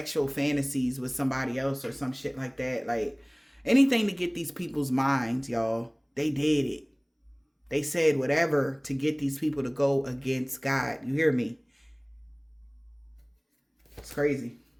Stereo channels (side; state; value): both; identical; correlation 1.00